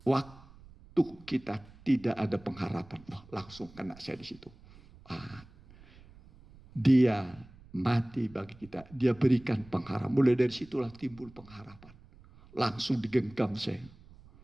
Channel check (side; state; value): right; noise; rumble, 23 dB below the sound